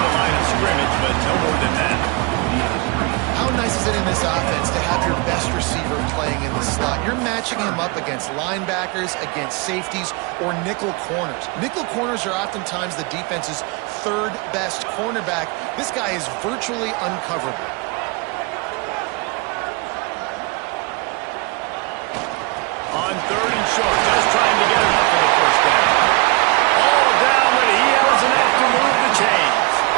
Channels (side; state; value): left; quieter; 28.5 dB